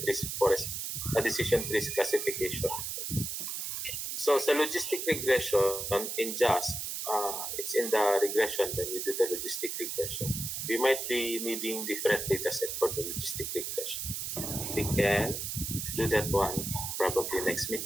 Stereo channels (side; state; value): right; noise; hiss, 4 dB below the sound